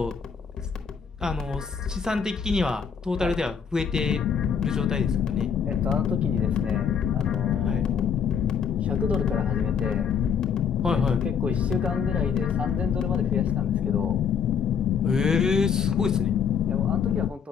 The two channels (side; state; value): right; quieter; 7.0 dB